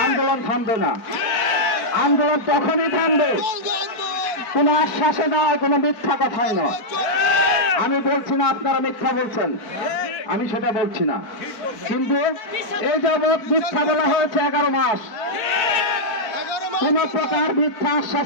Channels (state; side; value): late; right; 4.5 ms